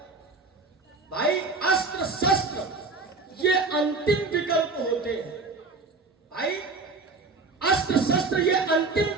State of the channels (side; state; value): left; quieter; 3.8 dB